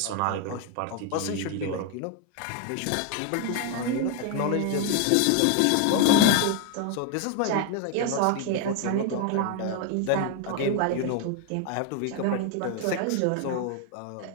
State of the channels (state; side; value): different; both; correlation 0.01